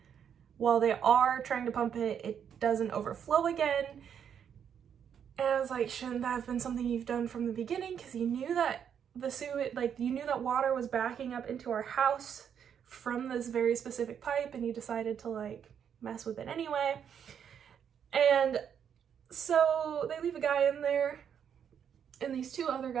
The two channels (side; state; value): left; quieter; 8.2 dB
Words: while they are trying to pump it, it doesn't overflow again. And I was like, shouldn't that have been something you've done from the beginning? Because you knew that the sewage, like you knew that water was backing up into our house from this very specific pipe, and you decided to like mess with it anyway. And so they leave a guy in there, and these 2 other